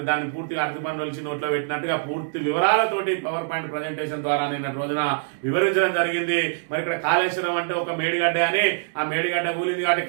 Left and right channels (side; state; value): left; silent; 63 dB below the other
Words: దాన్ని పూర్తిగా అరటిపండు వచ్చి నోట్లో పెట్టినట్టుగా పూర్తి వివరాలతోటి పవర్ పాయింట్ ప్రజెంటేషన్ ద్వారా నిన్నటి రోజున వివరించడం జరిగింది. మరి ఇక్కడ కాళేశ్వరం అంటే ఒక మేడిగడ్డ అని, ఆ మేడిగడ్డ కూలింది కాబట్టి